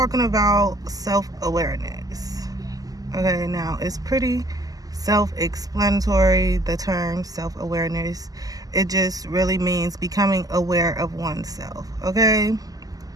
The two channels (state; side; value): late; left; 0.17 ms